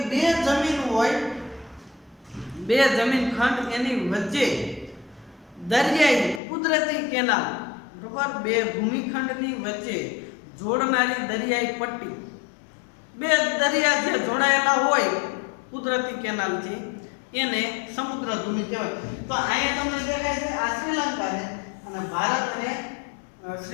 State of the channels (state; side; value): drops out; right; at 6.4 s